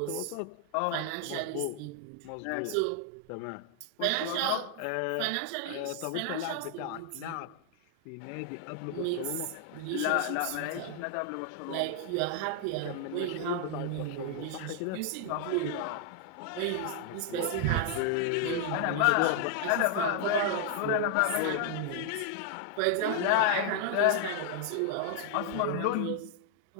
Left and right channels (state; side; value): different; both; correlation 0.00